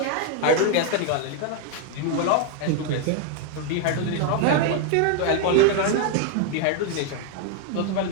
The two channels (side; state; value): both; different; correlation 0.00